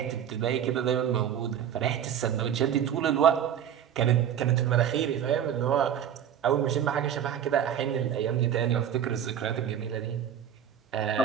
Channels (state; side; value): quieter; left; 9.4 dB